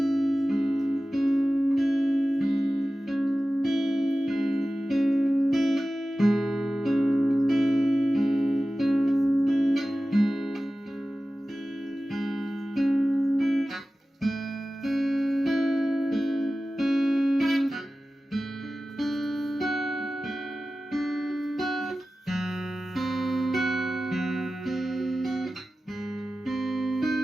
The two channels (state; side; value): normal; both; correlation 0.95